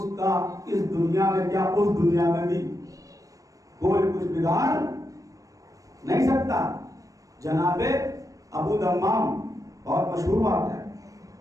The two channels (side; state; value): left; late; 0.16 ms